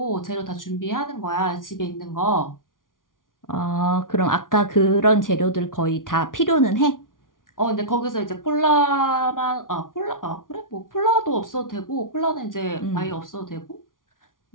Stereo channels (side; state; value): right; late; 0.89 ms